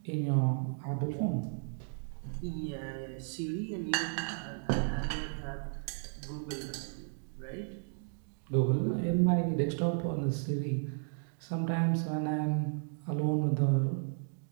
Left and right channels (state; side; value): silent; left; digital silence